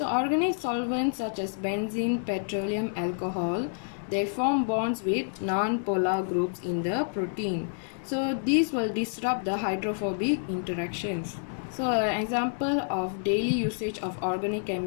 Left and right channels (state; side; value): silent; right; 59 dB below the other